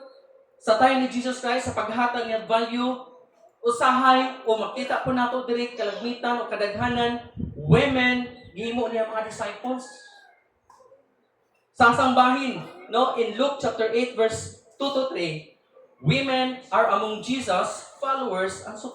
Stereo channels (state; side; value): identical; both; correlation 1.00